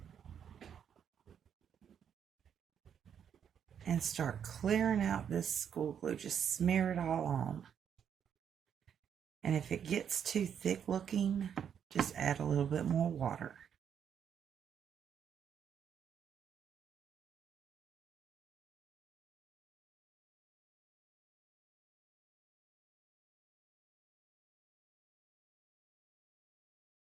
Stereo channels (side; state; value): left; quieter; 8.3 dB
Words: And start clearing out this school glue. Just smear it all on. And if it gets too thick looking, just add a little bit more water.